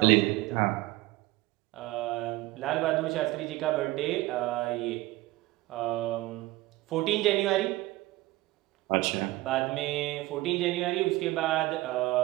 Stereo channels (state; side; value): quieter; left; 18.7 dB